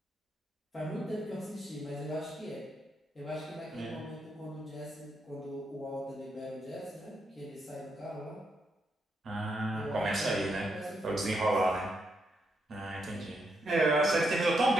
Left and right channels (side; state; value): both; normal; correlation 0.80